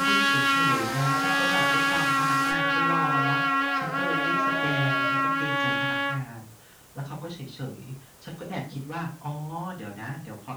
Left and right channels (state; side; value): identical; both; correlation 1.00